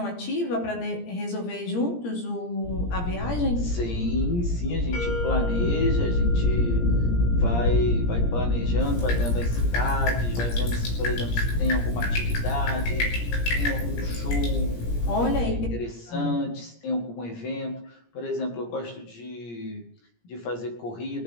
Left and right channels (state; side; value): late; right; 17 ms